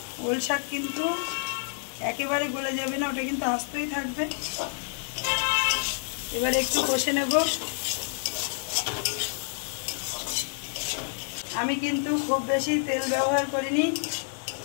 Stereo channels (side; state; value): right; silent; digital silence